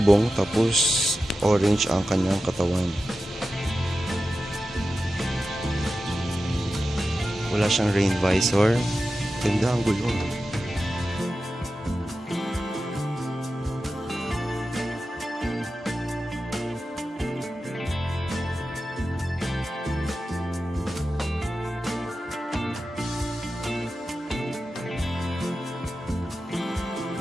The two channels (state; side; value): normal; both; correlation 0.92